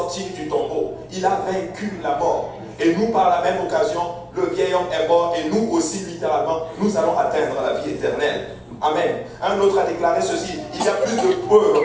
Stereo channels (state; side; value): identical; both; correlation 1.00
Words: du tombeau. Il a vaincu la mort. Et nous, par la même occasion, le vieil homme est mort et nous aussi, littéralement, nous allons atteindre la vie éternelle. Amen. Un autre a déclaré ceci: il y a plus de